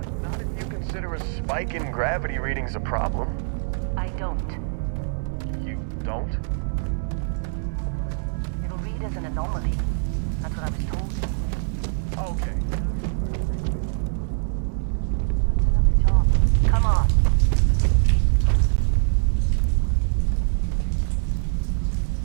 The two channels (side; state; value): left; silent; 63 dB below the other